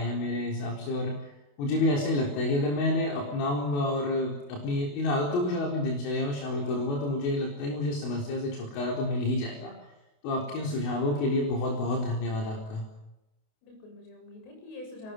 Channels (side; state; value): right; late; 28 ms